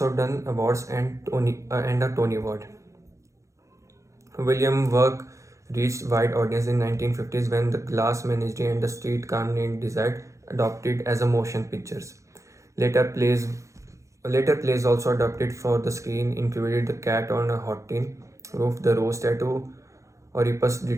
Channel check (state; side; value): late; left; 0.15 ms